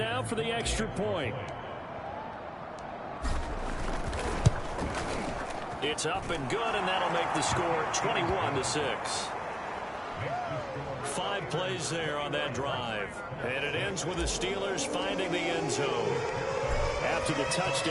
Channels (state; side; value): identical; both; correlation 1.00